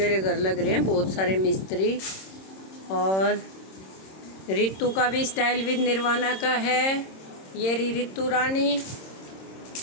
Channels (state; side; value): late; right; 26 ms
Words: घर लग रहे हैं बहुत सारे मिस्त्री। और रितु का भी स्टाइल विद निर्वाणा का है। ये रितु रानी,